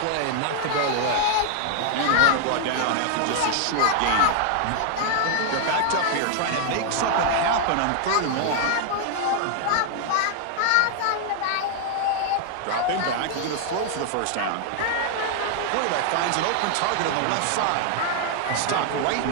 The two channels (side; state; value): both; different; correlation 0.00